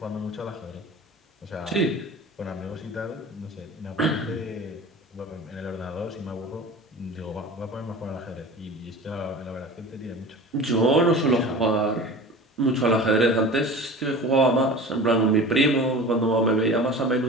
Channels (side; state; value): both; normal; correlation 0.37